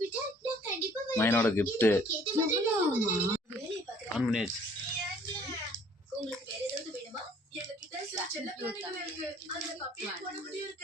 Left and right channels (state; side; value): normal; both; correlation 0.57